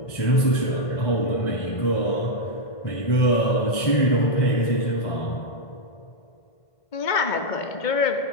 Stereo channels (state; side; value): late; right; 1.5 ms